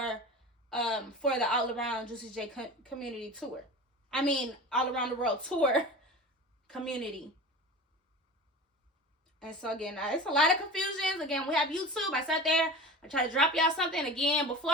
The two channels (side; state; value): both; normal; correlation 0.33